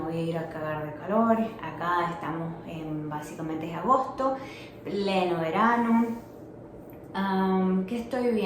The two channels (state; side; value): identical; both; correlation 1.00